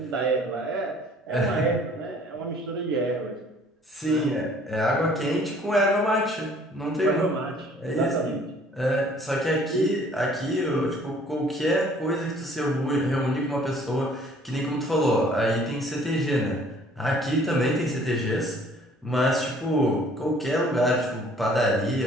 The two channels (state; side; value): normal; both; correlation 0.56